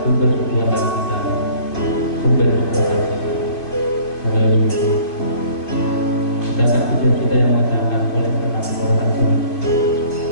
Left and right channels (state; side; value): late; right; 2.5 ms